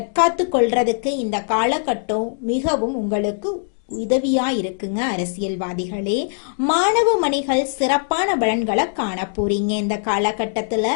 கொள்றதுக்கு இந்த காலகட்டம் மிகவும் உங்களுக்கு உதவியா இருக்குங்க. அரசியல்வாதிகளே, மாணவ மணிகள் சிறப்பான பலன்களை காண போறீங்க. இந்த காலகட்டத்துல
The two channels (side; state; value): right; silent; digital silence